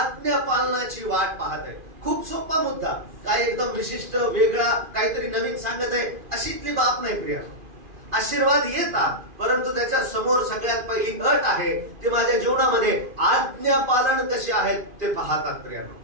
पालनाची वाट पाहते। खूप सोपा मुद्दा, काय एकदम विशिष्ट वेगळा काहीतरी नवीन सांगत आहे अशीतली बाब नाही प्रिया। आशीर्वाद येतात, परंतु त्याच्या समोर सगळ्यात पहिली अट आहे, ते माझ्या जीवनामध्ये आज्ञा पालन कसे आहेत ते पाहतात प्रियानो।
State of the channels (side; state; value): left; late; 2.5 ms